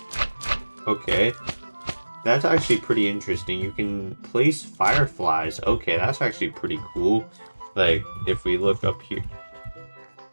Okay, that's actually pretty interesting. You can place fireflies. Okay, that's actually pretty cool. Like if we look up here.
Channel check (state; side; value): inverted; both; correlation -1.00